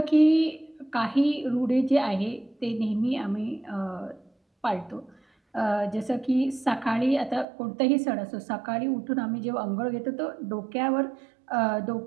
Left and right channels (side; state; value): left; drops out; at 7.5 s